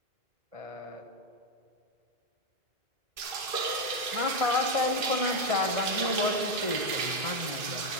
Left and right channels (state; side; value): late; left; 2.5 ms